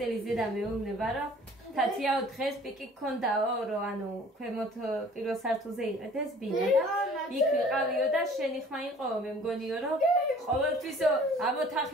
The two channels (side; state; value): both; normal; correlation 0.51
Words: ზედა მეუბნება, რომ თათიაო დღეს პიკი გქონდაო, რომ ანუ ქვემოთ პირველ სართულზე იყედეს ბინა და იქ ვიყავიო და შენი ხმა იყოო, მე მგონიო, რომ ყოველთვისო ამ